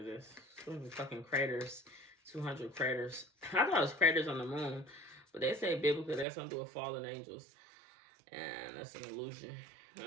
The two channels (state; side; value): drops out; left; at 6.2 s